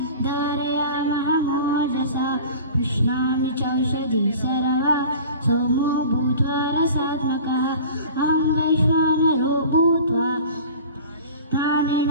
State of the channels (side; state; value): both; inverted; correlation -0.39